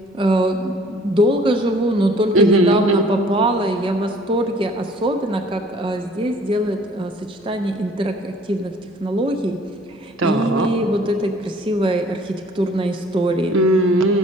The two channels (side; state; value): both; normal; correlation 0.54